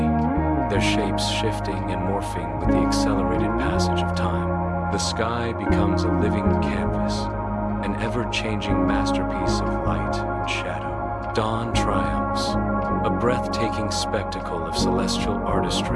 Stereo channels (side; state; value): both; identical; correlation 1.00